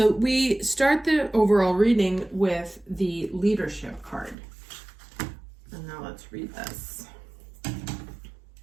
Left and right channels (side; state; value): left; drops out; at 4.4 s